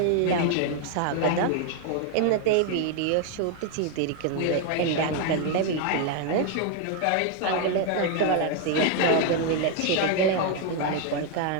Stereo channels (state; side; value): different; both; correlation 0.01